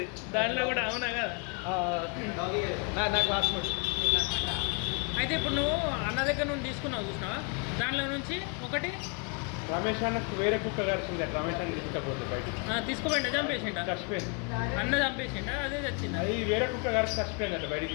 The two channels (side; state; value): right; quieter; 35.2 dB